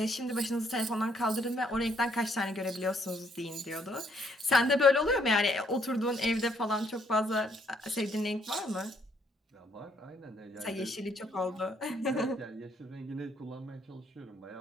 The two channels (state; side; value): normal; both; correlation 0.69